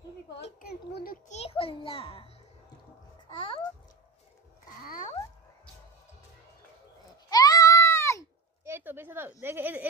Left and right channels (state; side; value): quieter; left; 4.7 dB